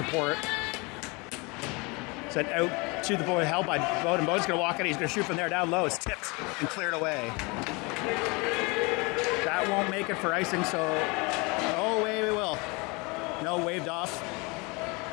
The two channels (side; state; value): right; quieter; 27.6 dB